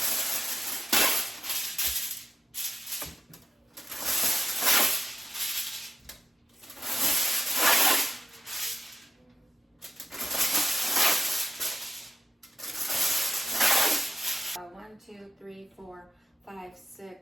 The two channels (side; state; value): both; normal; correlation 0.91